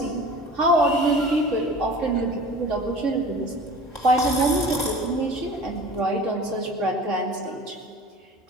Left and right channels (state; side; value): normal; both; correlation 0.40